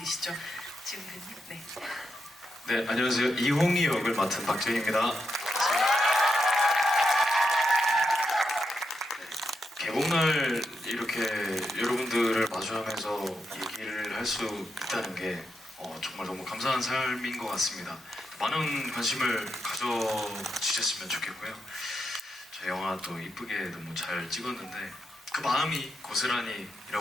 지금 네. 네, 안녕하세요. 이홍이 역을 맡은 박재희입니다. 개봉날 이렇게 여러분들을 마주하면서 얘기를 할 수 있다는 게 정말 너무 감사한 삶인 것 같습니다. 많은 관심을 가져주셨으면 좋겠고요. 저 영화 또 이쁘게 너무 잘 찍었는데 그 마음이 고스란히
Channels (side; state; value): both; normal; correlation 0.83